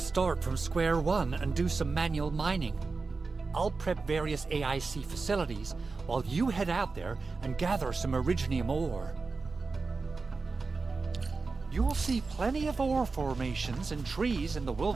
from square one and do some manual mining. I'll prep various AIC facilities while you head out there and gather some Originium ore. You'll see plenty of ore formations and trees in the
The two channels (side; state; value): left; quieter; 4.1 dB